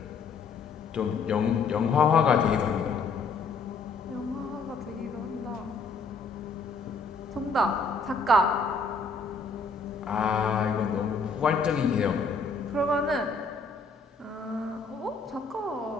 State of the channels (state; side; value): quieter; right; 4.3 dB